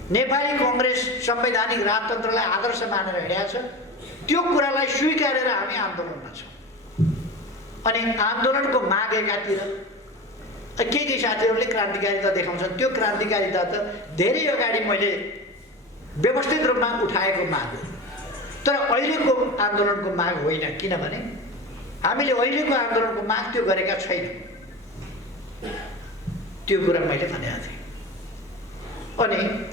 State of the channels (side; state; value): both; normal; correlation 0.29